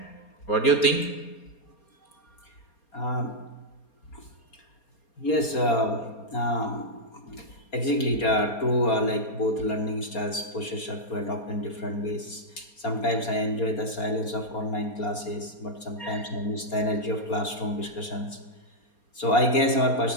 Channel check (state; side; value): late; right; 4.3 ms